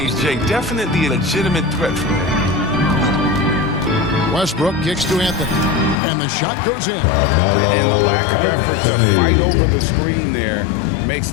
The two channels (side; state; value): right; drops out; at 6.0 s